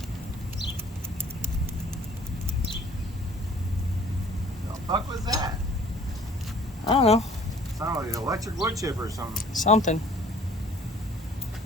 The fuck was that? I don't know. Sounded like an electric wood chipper or something. Something.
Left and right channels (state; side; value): normal; both; correlation 0.53